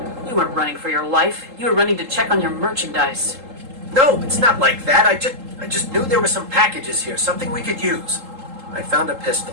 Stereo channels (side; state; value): left; late; 3.8 ms